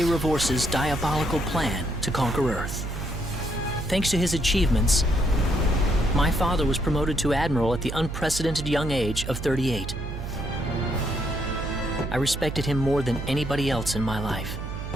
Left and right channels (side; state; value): right; noise; hum, 7 dB below the sound